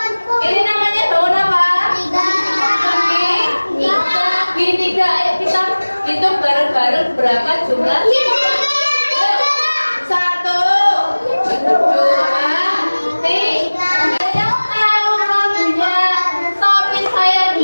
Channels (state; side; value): inverted; both; correlation -1.00